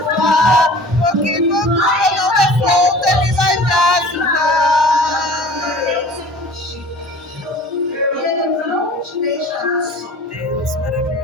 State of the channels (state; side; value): normal; both; correlation 0.44